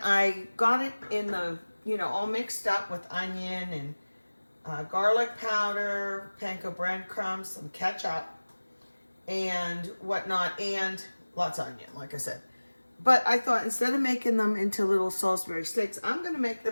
I got it in the, all mixed up with onion and garlic powder, panko breadcrumbs, some ketchup and whatnot, and lots of onion, like I said. But I thought instead of making them into little Salisbury steaks, I'm going to make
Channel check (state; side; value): inverted; both; correlation -1.00